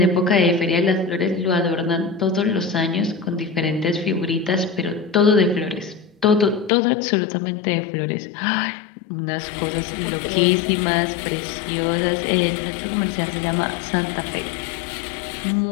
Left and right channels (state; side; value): drops out; right; at 6.7 s